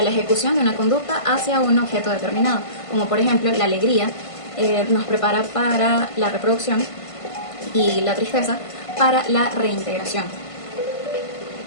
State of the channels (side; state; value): right; late; 1.5 ms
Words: la ejecución de una conducta hacia un objeto determinado, como por ejemplo la alegría nos prepara para la reproducción y la tristeza para la reintegración.